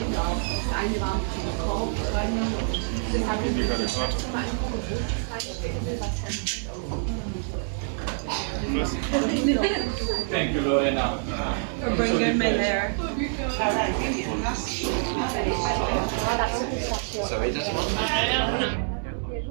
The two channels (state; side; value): silent; left; digital silence